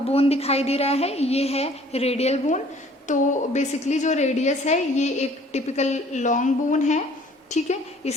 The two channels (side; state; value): both; normal; correlation 0.55